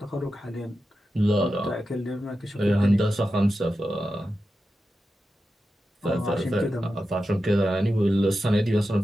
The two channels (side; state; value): both; normal; correlation 0.91